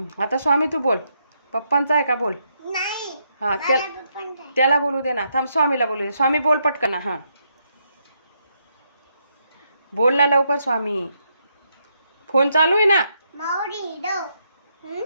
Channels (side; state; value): both; inverted; correlation -0.78